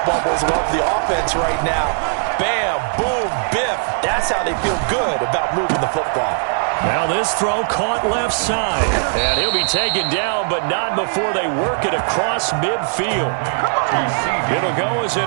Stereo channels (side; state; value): left; silent; digital silence